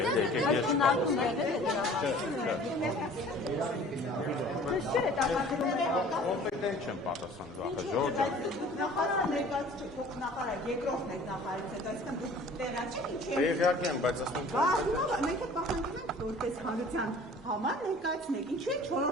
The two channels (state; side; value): normal; both; correlation 0.48